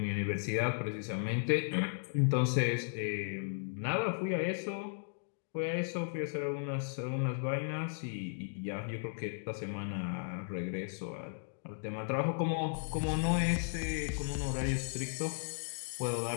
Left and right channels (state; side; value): silent; right; digital silence